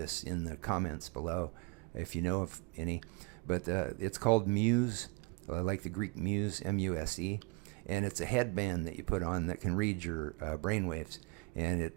in the comments below if you know of any. But it's called Muse, like the Greek Muse, M-U-S-E, and it's a headband that you put on that can read your brain waves, and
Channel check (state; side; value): quieter; left; 29.3 dB